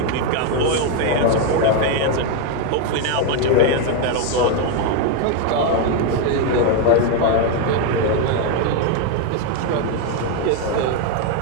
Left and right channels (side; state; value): both; different; correlation 0.01